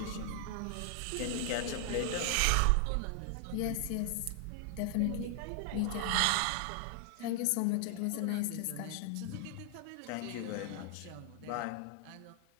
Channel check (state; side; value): different; both; correlation 0.00